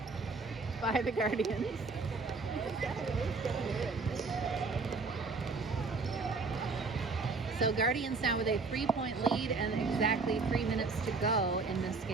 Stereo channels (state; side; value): quieter; left; 4.1 dB